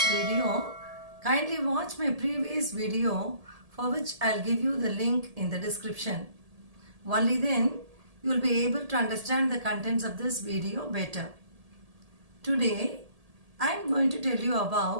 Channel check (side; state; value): left; late; 1.7 ms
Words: video, kindly watch my previous video for which I'll give you the link in the description. Only then you will be able to understand the contents of this video better. Today I am going to tell you